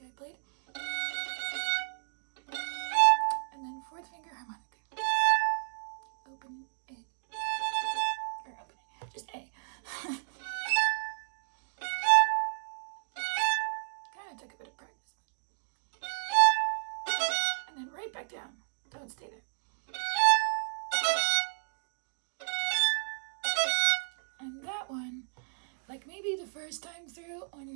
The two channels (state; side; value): silent; left; digital silence